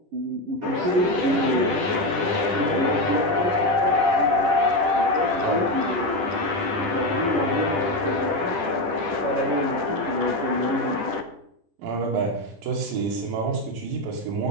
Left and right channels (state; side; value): late; left; 10 ms